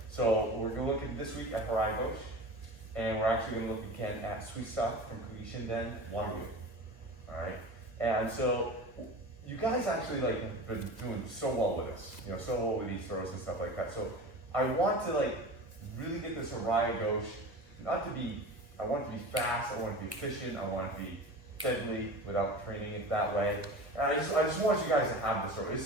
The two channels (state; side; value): late; left; 1.8 ms